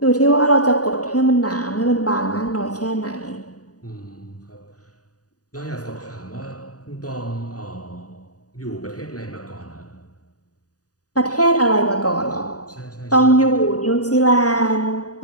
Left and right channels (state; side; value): late; right; 0.68 ms